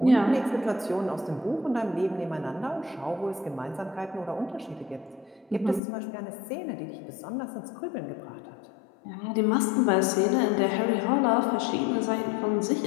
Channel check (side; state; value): right; drops out; at 5.8 s